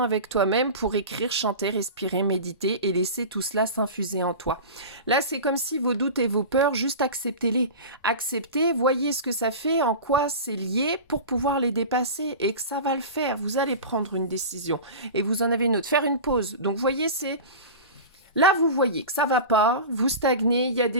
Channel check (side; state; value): both; inverted; correlation -0.31